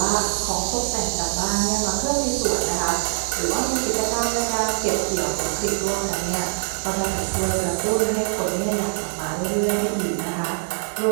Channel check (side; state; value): left; silent; 56 dB below the other